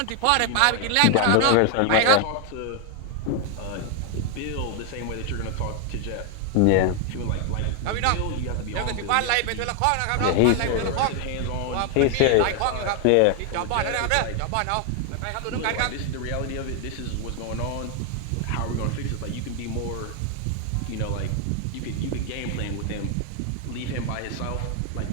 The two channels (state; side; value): different; both; correlation 0.00